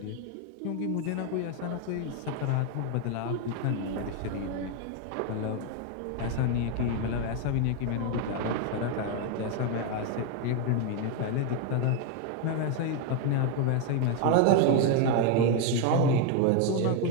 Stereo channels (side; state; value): both; different; correlation 0.01